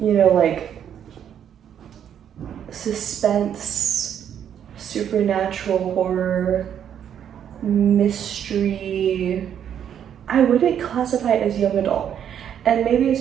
like suspense, supernatural horror, mystery. I wouldn't classify it as young adult. And maybe it's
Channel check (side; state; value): left; quieter; 9.2 dB